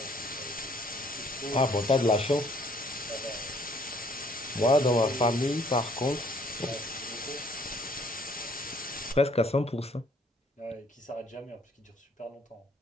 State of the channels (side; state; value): both; normal; correlation 0.62